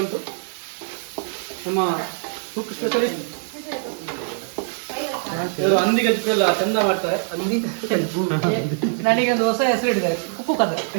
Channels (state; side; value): silent; left; 64 dB below the other